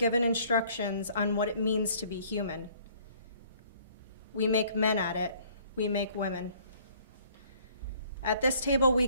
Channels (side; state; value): both; inverted; correlation -0.59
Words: instructions on what it means to be human. We make men at it. We make women. At this table we